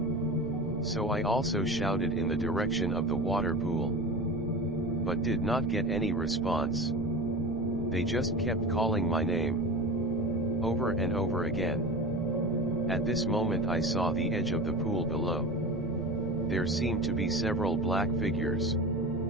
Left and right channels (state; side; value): noise; right; rumble, 18 dB below the sound